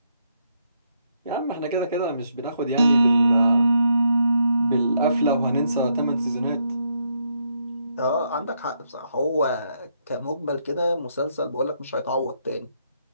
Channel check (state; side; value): inverted; both; correlation -0.76